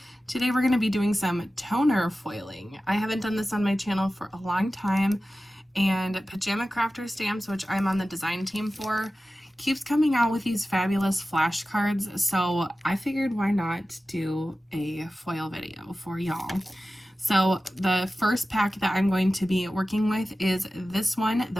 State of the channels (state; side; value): normal; both; correlation 0.95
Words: Today we're going to be doing some toner foiling. I haven't done this on my channel for a long time, and Pajama Crafter Stamps, which I'm on the design team for, keeps coming out with these fabulous flashcards, so I figured why not do a foil video for y'all. So the first pack that I'm going to be working with is this one,